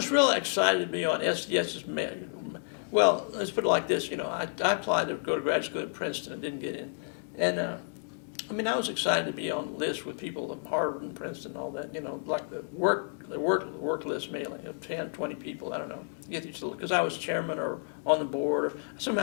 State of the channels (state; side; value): silent; right; digital silence